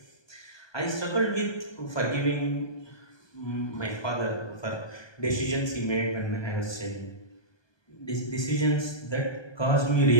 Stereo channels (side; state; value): right; late; 1.2 ms